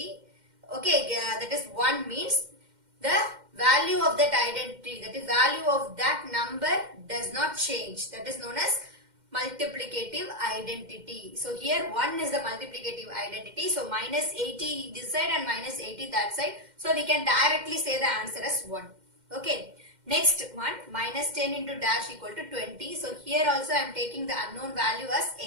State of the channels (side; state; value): left; late; 2.1 ms